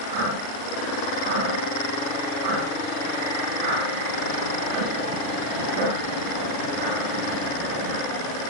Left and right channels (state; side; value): late; left; 36 ms